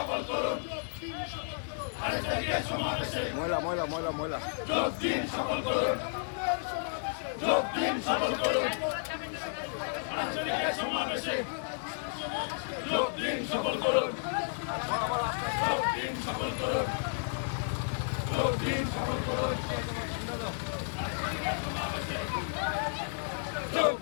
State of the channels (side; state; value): right; silent; digital silence